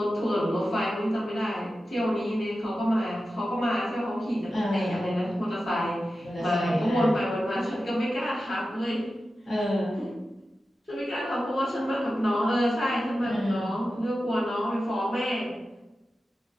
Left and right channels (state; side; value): normal; both; correlation 0.93